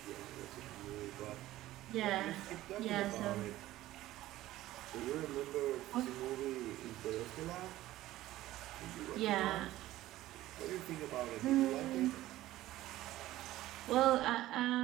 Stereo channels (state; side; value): quieter; left; 15.5 dB